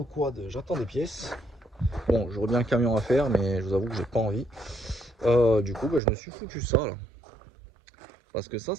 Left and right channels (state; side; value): drops out; left; at 6.0 s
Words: quad, j'attends des pièces. Bon, j'aurais bien un camion à faire, mais je vous avoue que j'ai pas envie. Du coup, je me suis foutu ça là. Parce que ça